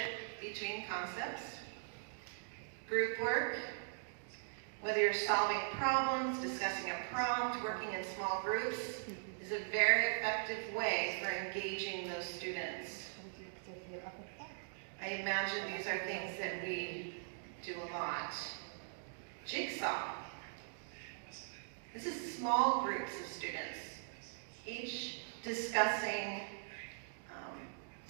between concepts. Group work. Whether you're solving problems, discussing a prompt, working in small groups, is a very effective way for engaging those students. I imagine these are things that we do a lot. Jigsaw. This is small groups of students, each discussing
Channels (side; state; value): left; silent; digital silence